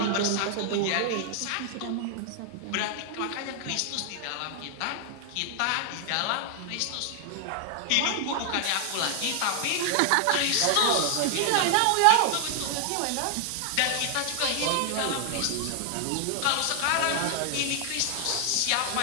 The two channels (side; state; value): both; different; correlation 0.00